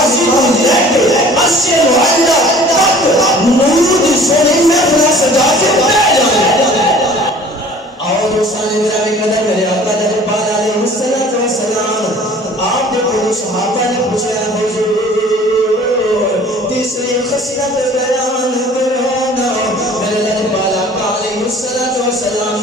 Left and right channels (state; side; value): normal; both; correlation 0.49